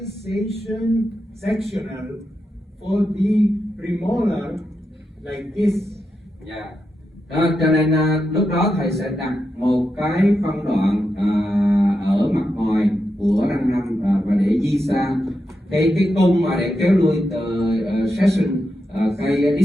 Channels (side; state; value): both; normal; correlation 0.87